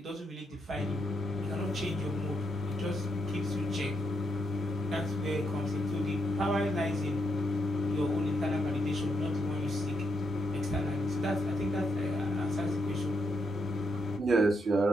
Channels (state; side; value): normal; both; correlation 0.79